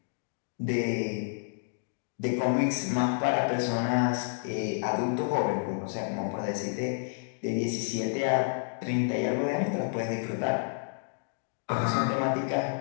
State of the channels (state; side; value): silent; right; digital silence